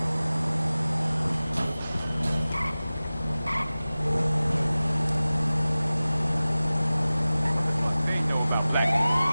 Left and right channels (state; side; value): inverted; both; correlation -0.97